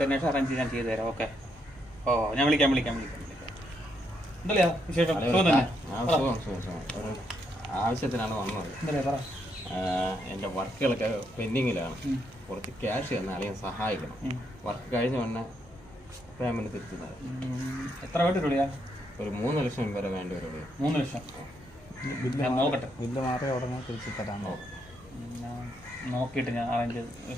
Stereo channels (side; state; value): both; normal; correlation 0.77